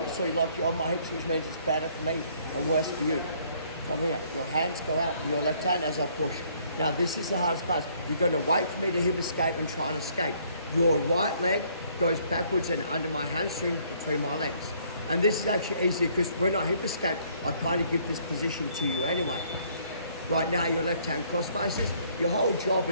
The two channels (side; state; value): both; inverted; correlation -0.63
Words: so you like you're on my hips, which means it's better for me and worse for you. From here, your hands go out, your left hand as I push. Now this is the hardest part. You're going to wait for me to hip escape and try and escape. Your right leg goes backwards and under my hamstring between my legs. And this is actually easy because when I hip escape, I kind of give this position to you anyway. Right now, your left hand cross faces. Your whole job